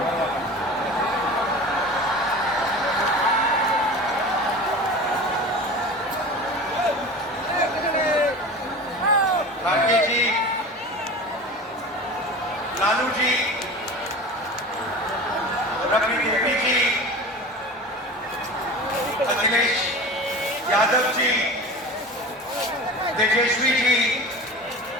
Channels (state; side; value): normal; both; correlation 0.34